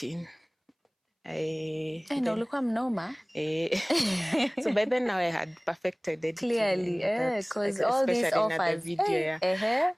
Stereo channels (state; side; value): identical; both; correlation 1.00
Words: Ulikuwa mnoma. So by then now I had perfected editing. Clearly, because all these offers. The video,